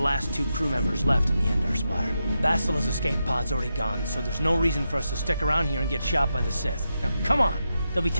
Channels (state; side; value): inverted; both; correlation -0.87